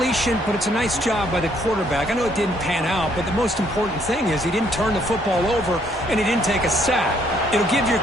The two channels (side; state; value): both; normal; correlation 0.68